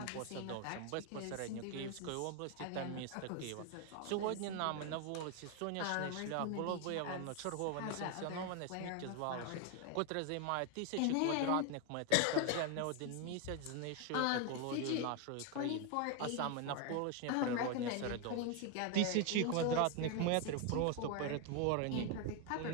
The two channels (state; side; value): different; both; correlation 0.01